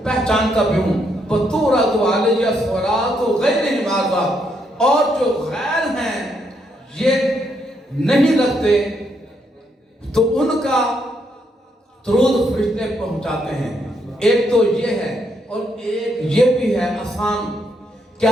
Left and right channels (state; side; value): normal; both; correlation 0.76